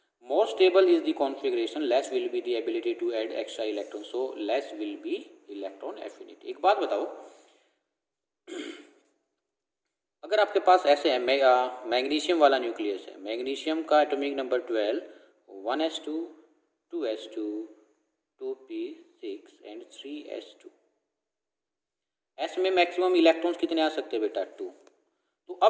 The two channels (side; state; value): both; identical; correlation 1.00